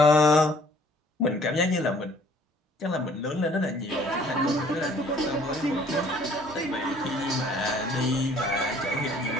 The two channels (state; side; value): normal; both; correlation 0.57